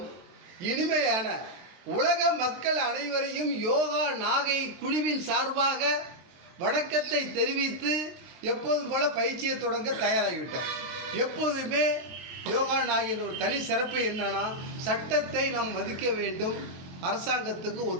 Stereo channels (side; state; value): left; late; 23 ms